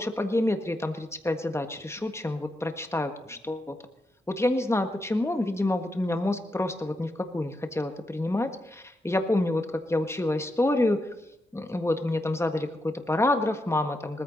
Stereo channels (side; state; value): both; normal; correlation 0.84